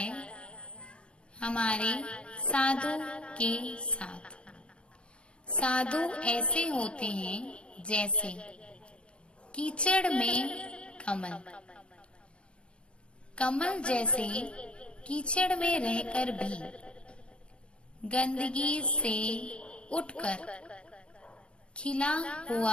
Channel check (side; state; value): right; late; 0.057 ms